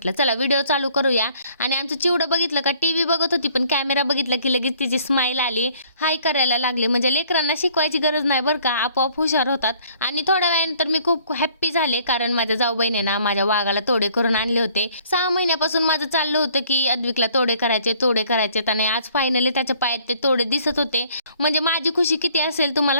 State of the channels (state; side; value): inverted; both; correlation -0.59